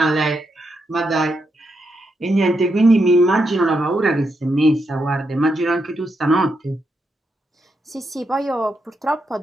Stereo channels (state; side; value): normal; both; correlation 0.82